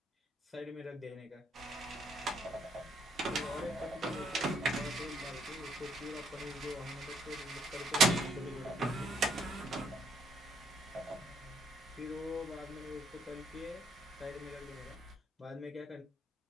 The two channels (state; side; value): normal; both; correlation 0.70